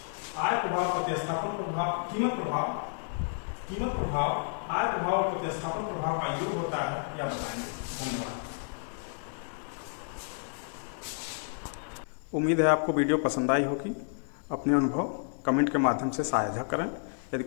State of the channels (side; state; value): right; silent; 57 dB below the other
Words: आय प्रभाव, प्रतिस्थापन प्रभाव, कीमत प्रभाव, आय प्रभाव और प्रतिस्थापन प्रभाव का योग होता है, यह बताएंगे। धन्यवाद। उम्मीद है आपको वीडियो पसंद आई होगी। अपने अनुभव कमेंट के माध्यम से साझा करें। यदि